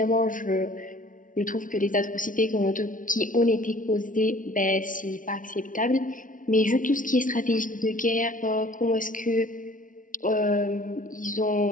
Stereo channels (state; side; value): late; right; 0.38 ms